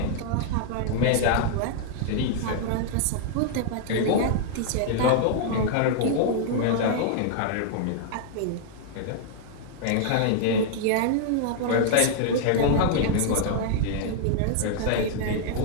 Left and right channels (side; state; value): both; different; correlation -0.01